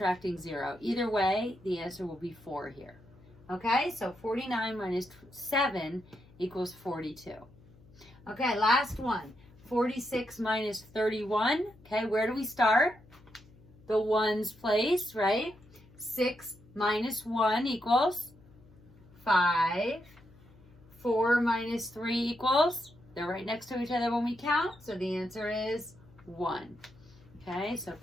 0. Either way, the answer will be 4 here. Okay, so 49 minus 7 equals 42. Okay, last one. 46 minus 31. Okay, where do we start? The ones place, right? 6 minus 1 equals 5. 4 minus 3 equals, they're right next to each other when we count, so the answer is 1. Okay, so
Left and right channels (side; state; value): left; noise; hum, 25 dB below the sound